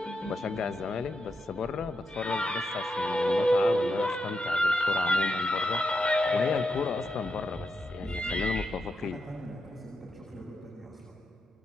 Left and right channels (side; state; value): both; normal; correlation 0.84